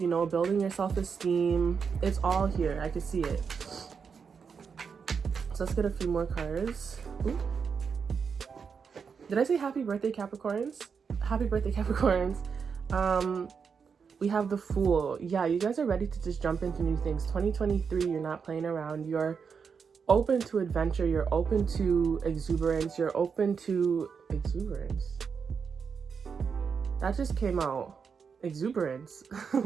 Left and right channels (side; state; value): left; quieter; 6.1 dB